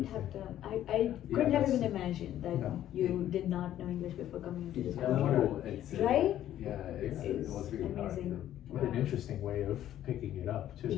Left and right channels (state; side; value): quieter; right; 12.1 dB